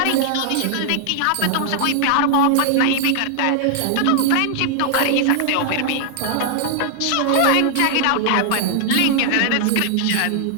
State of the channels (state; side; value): different; both; correlation 0.00